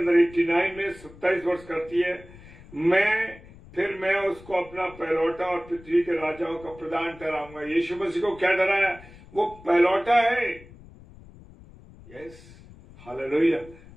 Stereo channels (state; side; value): noise; left; rumble, 21 dB below the sound